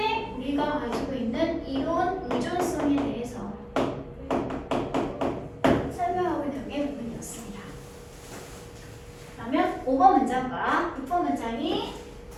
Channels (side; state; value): both; identical; correlation 1.00